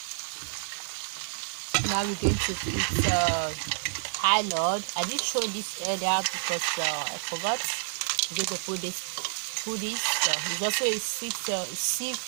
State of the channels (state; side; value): silent; left; 58 dB below the other